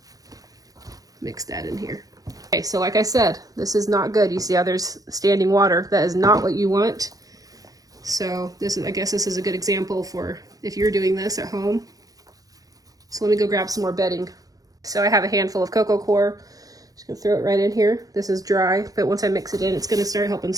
mix that in here. Okay, so like I said, this is not good. You see how there's standing water. That is not what you want. So this is, I guess this is a good example for if you're doing this at home. So let me go grab some more bedding. So I have a handful of cocoa coir. Just gonna throw it right in here. This is dry, but once I mix it in, it's gonna start helping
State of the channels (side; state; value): left; late; 0.17 ms